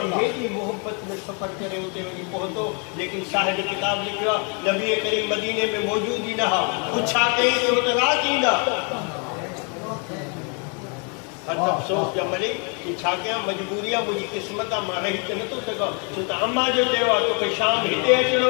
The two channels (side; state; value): right; quieter; 36.8 dB